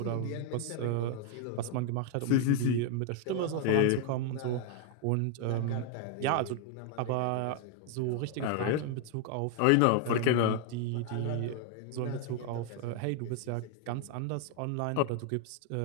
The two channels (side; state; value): both; different; correlation 0.00